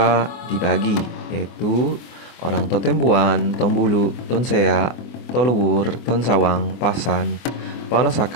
dibagi, yaitu orang Totembuan, Tombulu, Tonsea, Toluwur, Tonsawang, Pasan,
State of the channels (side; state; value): right; late; 24 ms